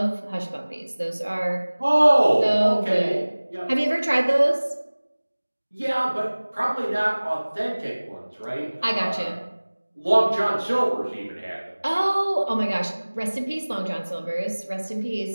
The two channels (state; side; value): inverted; both; correlation -1.00